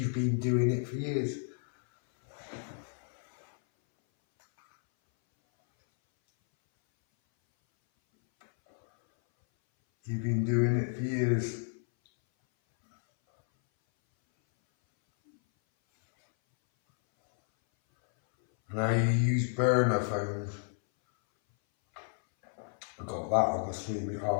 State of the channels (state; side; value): silent; right; 57 dB below the other